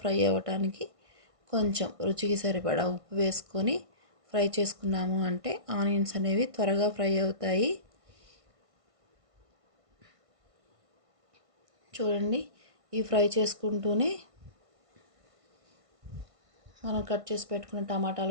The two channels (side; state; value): left; late; 1.5 ms